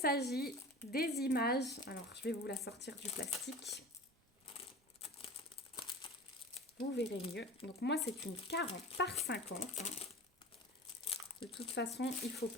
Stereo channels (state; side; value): normal; both; correlation 0.36